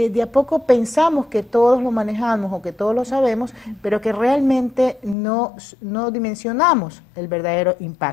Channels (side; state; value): right; drops out; at 5.2 s